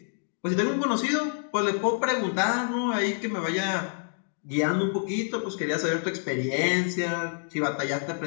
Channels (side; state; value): right; silent; digital silence